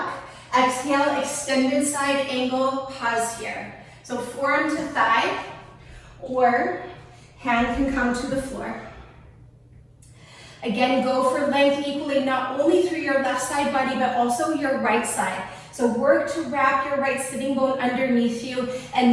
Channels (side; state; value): both; identical; correlation 1.00